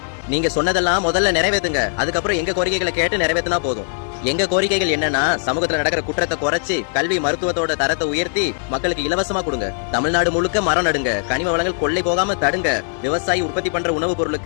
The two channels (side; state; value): right; silent; digital silence